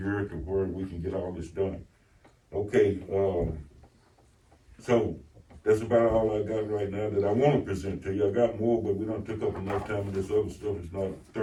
to where we can get all this done. Okay, so that's about all I got right now that I wanna present to you. I got more, but we done took up enough time, and this other stuff is not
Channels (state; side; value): identical; both; correlation 1.00